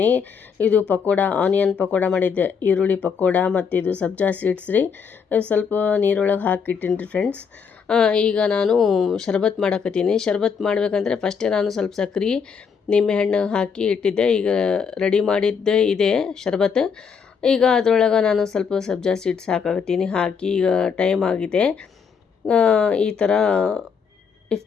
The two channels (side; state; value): right; quieter; 6.3 dB